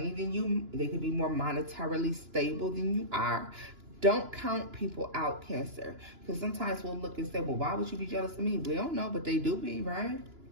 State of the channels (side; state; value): left; late; 2.9 ms